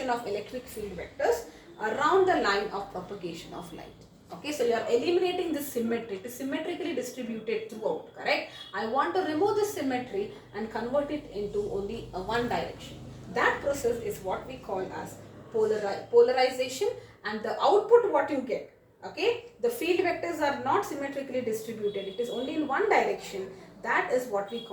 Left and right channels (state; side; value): identical; both; correlation 1.00